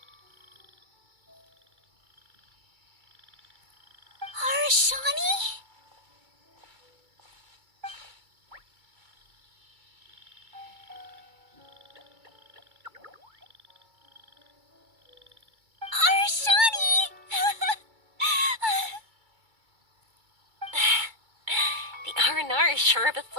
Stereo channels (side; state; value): left; late; 2.3 ms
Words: Arashani? Arashani! The R&R is sure of a